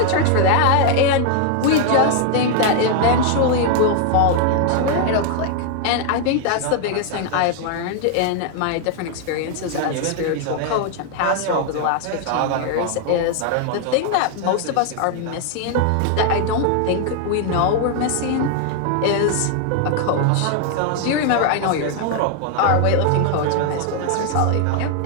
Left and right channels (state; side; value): different; both; correlation 0.00